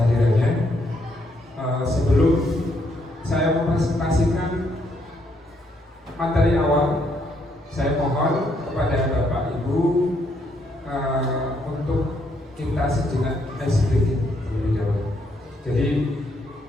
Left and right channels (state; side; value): normal; both; correlation 0.73